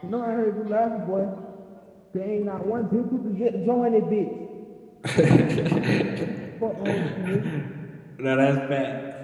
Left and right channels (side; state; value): both; identical; correlation 1.00